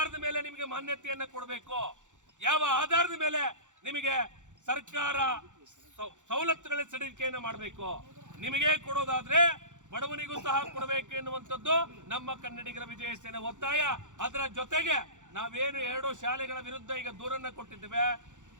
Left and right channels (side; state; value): left; late; 0.85 ms